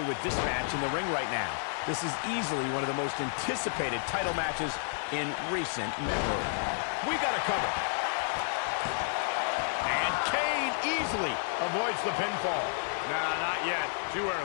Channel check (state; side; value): silent; right; digital silence